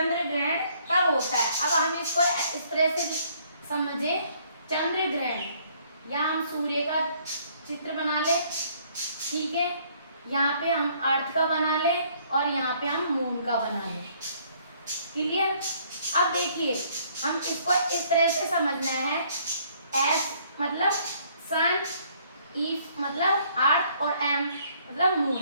कब होता है। अब हम इसको इस तरह से समझे, चंद्रग्रहण या हम सूर्य का चित्र बना ले, ठीक है, यहाँ पे हम अर्थ का बना ले और यहाँ पे हम मून का बना ले। क्लियर? अब देखिए हम इसको इस तरह से समझना है, एस मतलब सन, ई मतलब अर्थ और एम मतलब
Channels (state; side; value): inverted; both; correlation -0.63